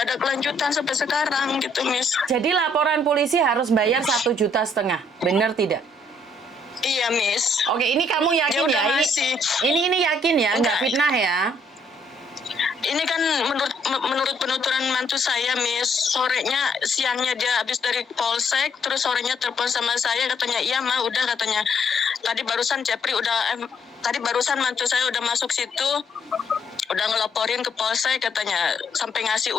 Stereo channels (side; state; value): both; normal; correlation 0.68